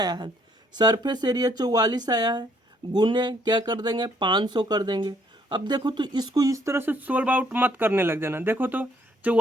है, सरफेस एरिया 44 आया है, गुने क्या कर देंगे 500 कर देंगे। अब देखो तो इसको इस तरह से सोल्व आउट मत करने लग जाना। देखो तो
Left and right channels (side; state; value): both; normal; correlation 0.67